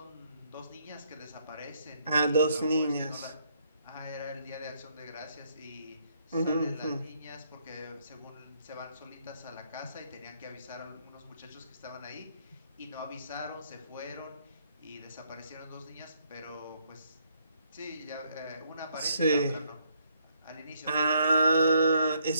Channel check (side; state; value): both; inverted; correlation -0.70